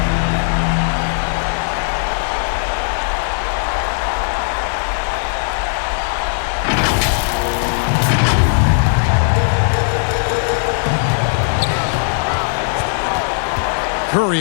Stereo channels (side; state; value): right; silent; digital silence